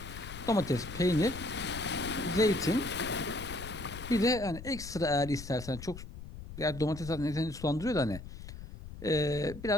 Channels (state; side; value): noise; left; rumble, 12 dB below the sound